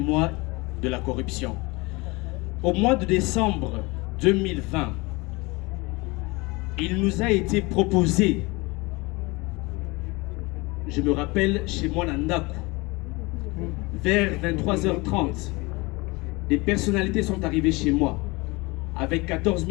de la corruption. Au mois de décembre 2020, il nous a été proposé, je me rappelle chez moi Nandaku, vers 23h30, des personnalités sont arrivées chez moi avec 14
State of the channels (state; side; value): quieter; right; 24.7 dB